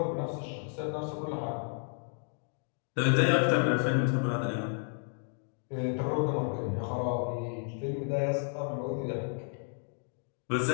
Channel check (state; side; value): silent; right; 56 dB below the other